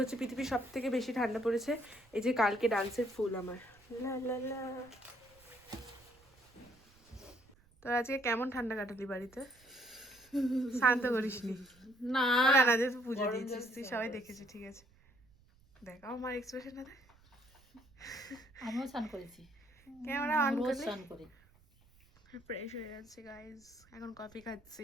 হচ্ছে পৃথিবীর সব থেকে বেশি ঠান্ডা পড়েছে। এই যে কালকে ডান্সের ফুল আমার লা লা লা। তোর আজকে কেমন ঠান্ডা কাটালি বাড়িতে? শান্ত করিসনি না না যে তুই পুজো দিয়েছিস, তুই সবাই দেখেছি, ঠিক আছে দেখ আমার এক্সপ্রেশন না। আমিও স্নান করেছি, ক্যামেরা অন রোজ করলে স্নান করি। ফ্রেশ হয়ে যাচ্ছে গাইজ। এখন কফি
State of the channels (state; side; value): noise; right; rumble, 29 dB below the sound